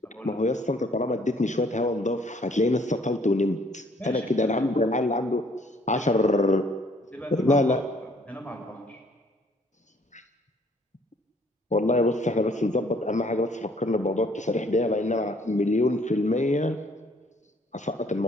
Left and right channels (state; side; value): normal; both; correlation 0.61